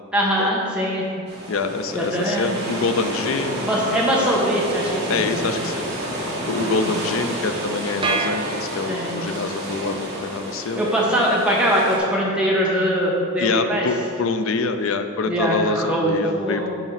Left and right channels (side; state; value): both; normal; correlation 0.21